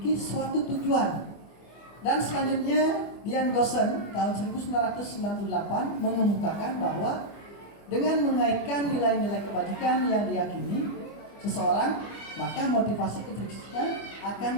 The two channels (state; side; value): late; right; 25 ms